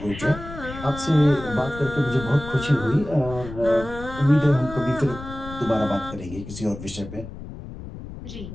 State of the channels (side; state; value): left; noise; rumble, 12 dB below the sound